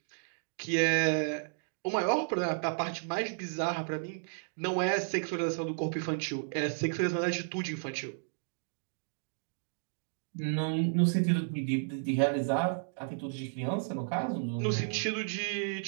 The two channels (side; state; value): left; silent; digital silence